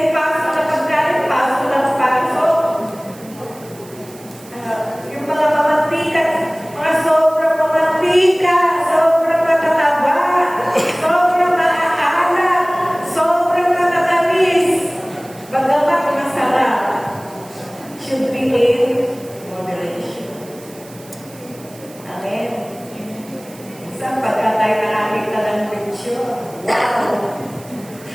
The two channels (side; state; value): right; noise; hiss, 22 dB below the sound